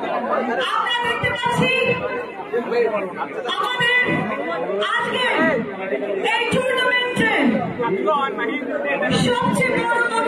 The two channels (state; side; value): identical; both; correlation 1.00